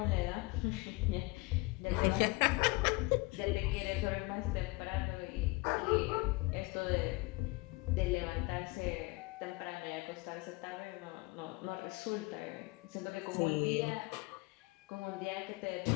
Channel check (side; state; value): right; quieter; 23.2 dB